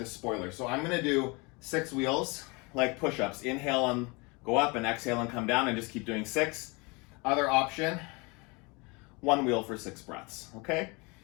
spoiler. So I'm gonna do 6 wheels, like push-ups. Inhale and go up, and exhale and come down, and just keep doing 6. Other option, 1 wheel for 6 breaths, okay?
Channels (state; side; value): quieter; right; 28.1 dB